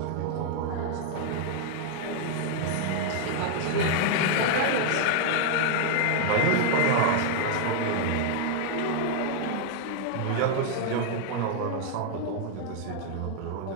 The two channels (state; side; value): different; both; correlation 0.00